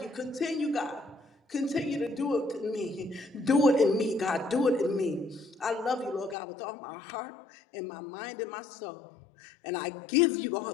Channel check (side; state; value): right; drops out; at 6.4 s